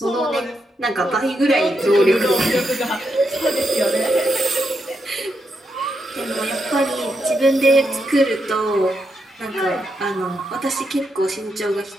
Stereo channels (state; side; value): normal; both; correlation 0.83